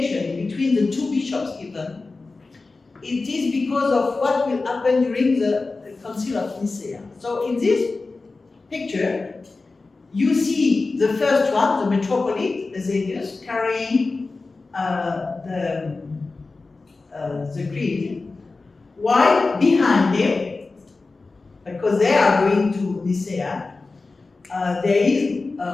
between the two bishops even? It is because of what will happen during the Council of Nicaea. So in this picture, you see the first one, the metropolitan Eusebius, carrying the creed, while behind him, because they are going to Nicea, there is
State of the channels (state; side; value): quieter; right; 3.7 dB